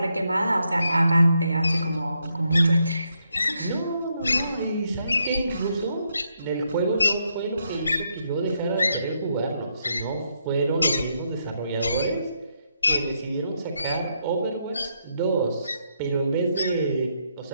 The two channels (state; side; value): inverted; both; correlation -0.78